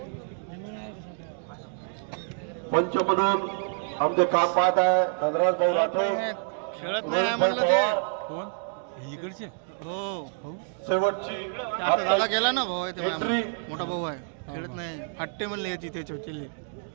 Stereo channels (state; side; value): silent; left; digital silence